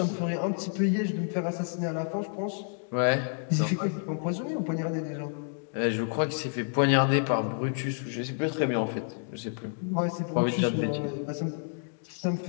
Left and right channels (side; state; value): right; silent; 58 dB below the other